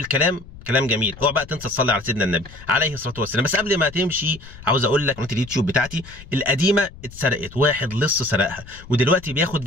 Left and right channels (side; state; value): left; noise; rumble, 18 dB below the sound